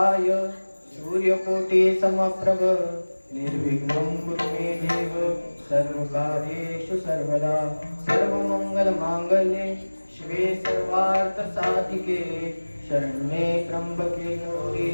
सूर्यकोटि समप्रभ निर्विघ्नं कुरु मे देव सर्वकार्येषु सर्वदा सर्वमंगलमांगल्ये शिवे सर्वार्थ साधिके शरण्ये त्र्यंबके गौरी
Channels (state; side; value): inverted; both; correlation -1.00